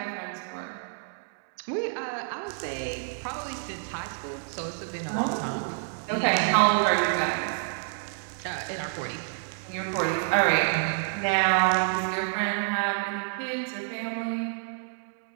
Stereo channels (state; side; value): silent; left; digital silence